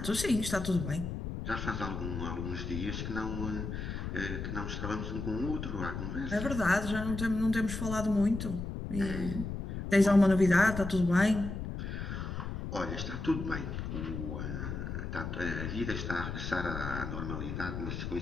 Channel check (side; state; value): left; noise; rumble, 5 dB below the sound